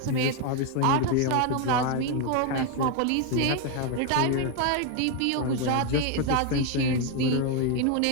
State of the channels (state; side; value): different; both; correlation 0.01